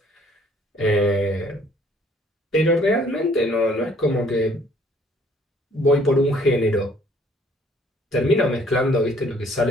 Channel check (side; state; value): both; normal; correlation 0.60